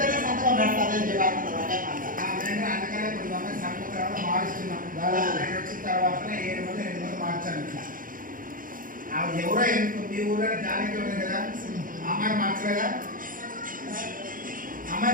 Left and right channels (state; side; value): late; left; 0.40 ms